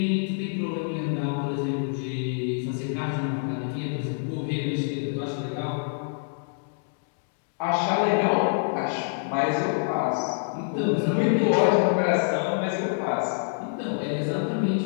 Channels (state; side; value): silent; right; digital silence